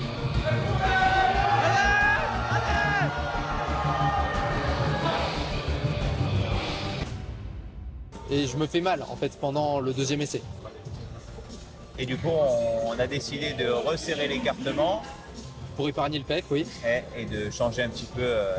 et je me fais mal en fait pendant le deuxième essai. Et du coup, on a décidé de resserrer l'écartement Pour épargner le pec, oui. et de changer un petit peu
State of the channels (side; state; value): both; identical; correlation 1.00